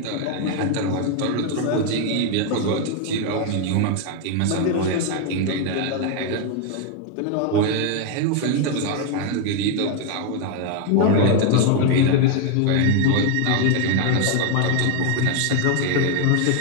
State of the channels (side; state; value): both; different; correlation 0.01